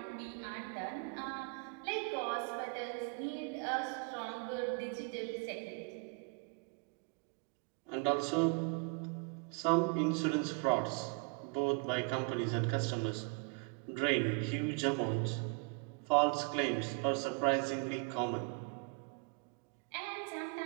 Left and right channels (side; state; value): left; quieter; 30.9 dB